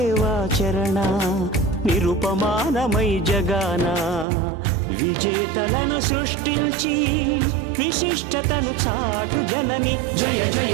నిరుపమానమై జగాన విజేతలను సృష్టించి విశిష్టతను చాటు జనని జయ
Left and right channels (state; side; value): drops out; left; at 4.2 s